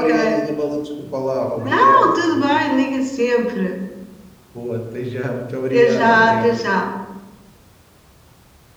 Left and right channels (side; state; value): both; identical; correlation 1.00